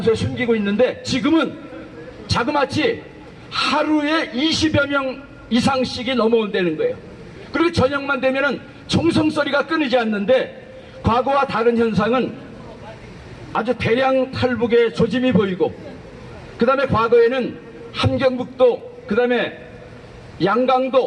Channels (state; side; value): identical; both; correlation 1.00